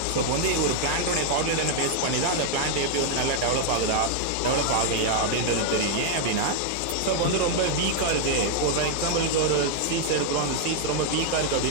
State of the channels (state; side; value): different; both; correlation 0.00